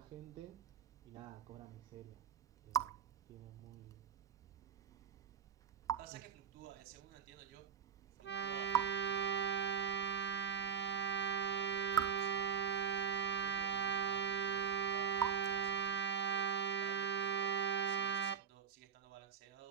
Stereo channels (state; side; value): quieter; left; 7.7 dB